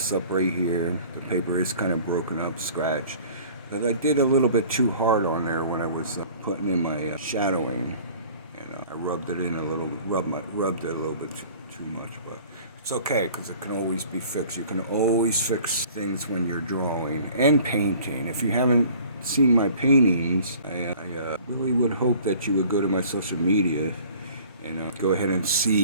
up right here. The paper is kind of broken up, scratched. But I did a little bit too hard on there when I was putting in my shadowing, and I rubbed it in a little, rubbed it a little bit too much, but it's okay because it can always be fixed. You can always fix things when you're drawing and painting. If you haven't seen my paintings, I really would hope that you would go to my social media and go ahead and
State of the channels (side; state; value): both; inverted; correlation -0.49